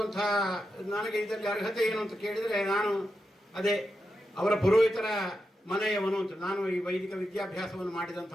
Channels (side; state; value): both; normal; correlation 0.88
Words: ನನಗೆ ಇದರಲ್ಲಿ ಅರ್ಹತೆ ಏನು ಅಂತ ಕೇಳಿದರೆ ನಾನು ಅದೇ ಅವರ ಪುರೋಹಿತರ ಮನೆಯವನು ಅಂತ. ನಾನು ಈ ವೈದಿಕ ವಿದ್ಯಾಭ್ಯಾಸವನ್ನು